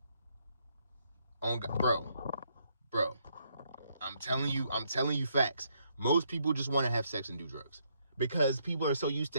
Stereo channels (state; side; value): inverted; both; correlation -0.74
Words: On God, bro, I'm telling you facts. Most people just want to have sex and do drugs because people are so used